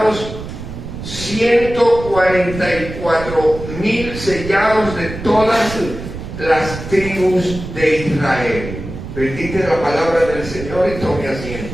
144,000 sellados de todas las tribus de Israel. Bendita la palabra del Señor y tome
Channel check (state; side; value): noise; right; rumble, 10 dB below the sound